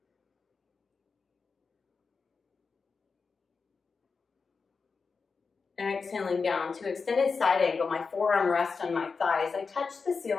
Exhaling down to extended side angle, my forearm rests on my thighs. I touch the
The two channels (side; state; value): right; quieter; 4.9 dB